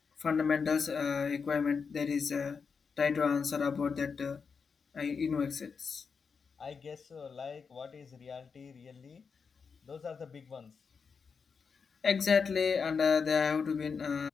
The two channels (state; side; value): quieter; right; 5.6 dB